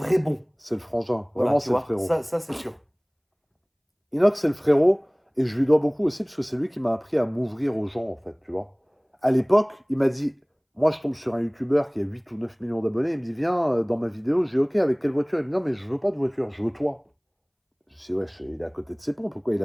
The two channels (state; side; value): identical; both; correlation 1.00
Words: bon. C'est le frangin. Voilà, Vraiment, tu c'est le vois. frérot. Ça c'est sûr. Inox, c'est le frérot, et je lui dois beaucoup aussi, parce que c'est lui qui m'a appris à m'ouvrir aux gens, en fait, tu vois. À l'époque, il m'a dit, moi, je tombe sur un YouTuber qui a 8 ou 9 millions d'abonnés, il me dit, viens dans ma vidéo, j'ai OK, avec quelle voiture? Il me dit, non, mais je veux pas de voiture, je veux toi. Je dis, ouais, il est à côté de ses pompes, pourquoi il